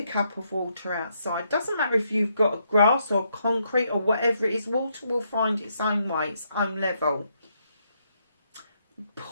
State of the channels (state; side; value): inverted; both; correlation -0.76